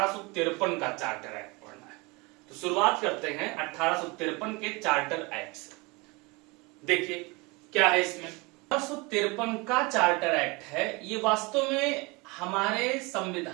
का चार्टर एक्ट पढ़ना है। तो शुरुआत करते हैं 1853 के चार्टर एक्ट से। देखिए क्या है इसमें। 1853 का चार्टर एक्ट है, ये वास्तव में हमारे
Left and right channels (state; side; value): quieter; left; 26.3 dB